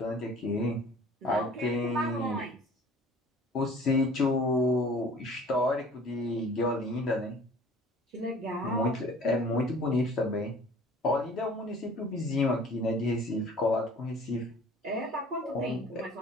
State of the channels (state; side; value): normal; both; correlation 0.48